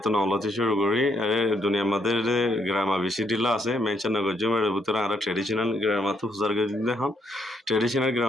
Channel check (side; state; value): both; normal; correlation 0.74